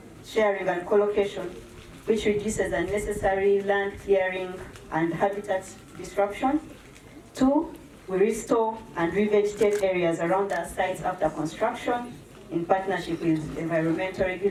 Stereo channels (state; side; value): identical; both; correlation 1.00